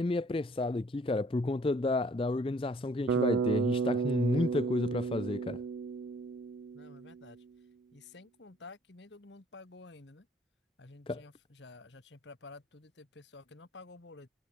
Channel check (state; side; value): normal; both; correlation 0.59